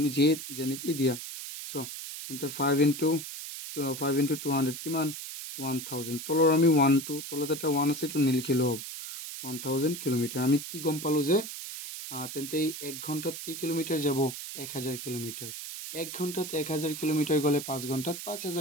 যে যেনেকৈ দিয়া so তেন্তে 5 into 200 কিমান 1000 তলৰ আমি 1 to তলত এটা 1 আছে এইটো নিলিখিলেও হ'ব 1000 কিলোমিটাৰ আমি কি গম পালো যে তেন্তে 1 ঘণ্টাত কি কিলোমিটাৰ যাব 1000 কিলোমিটাৰ 1 ঘণ্টাত 1000 কিলোমিটাৰ গলে 5 ঘণ্টাত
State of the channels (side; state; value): right; noise; hiss, 8 dB below the sound